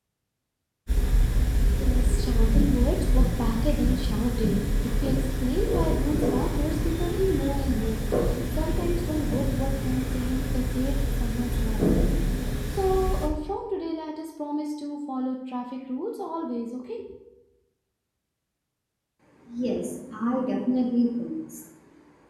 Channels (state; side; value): identical; both; correlation 1.00